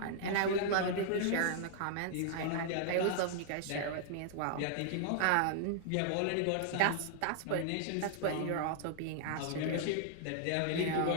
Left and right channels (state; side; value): different; both; correlation -0.01